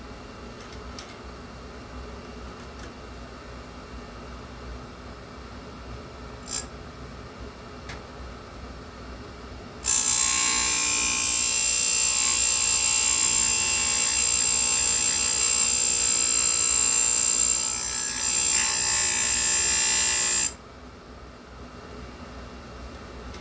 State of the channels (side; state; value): both; identical; correlation 1.00